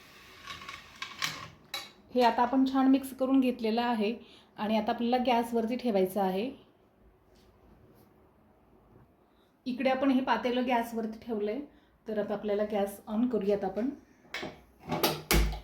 हे आता आपण छान मिक्स करून घेतलेलं आहे आणि आता आपल्याला गॅसवरती ठेवायचं आहे. इकडे आपण हे पातेलं गॅसवरती ठेवलंय. तर आता आपल्याला गॅस ऑन करूयात आपण.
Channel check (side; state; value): both; identical; correlation 1.00